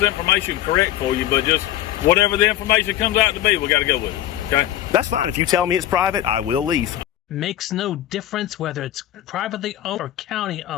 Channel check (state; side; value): quieter; right; 12.8 dB